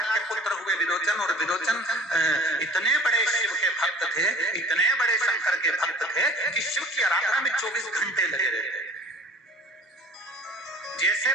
के पुत्र हुए विरोचन, और विरोचन इतने बड़े शिव के भक्त थे, इतने बड़े शंकर के भक्त थे कि शिव की आराधना में 24 घंटे लगे रहते। जैसे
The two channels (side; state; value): both; normal; correlation 0.45